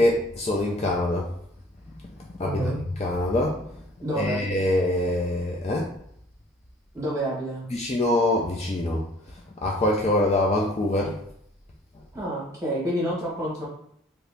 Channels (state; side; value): normal; both; correlation 0.54